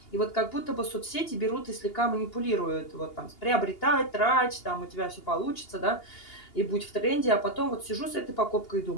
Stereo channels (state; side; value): late; right; 2.8 ms